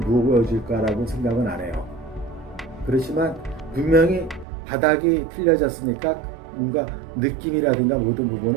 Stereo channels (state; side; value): drops out; left; at 4.5 s